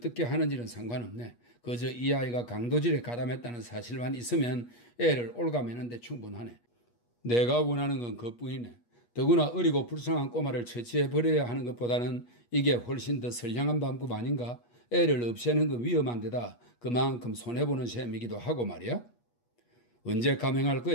하는지는 상관없네. 그저 이 아이가 강도질에 가담했다는 사실만 있으면 애를 올가매는 데 충분하네. 내가 원하는 건 그뿐이네. 더구나 어리고 불쌍한 꼬마를 처치해버려야 하는 것보다는 이게 훨씬 더 선량한 방법 아닌가? 애를 없애는 건 위험한 데다 그만큼 손해보는 셈이기도 하고 말이야. 언제 감행할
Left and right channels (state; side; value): late; right; 8.4 ms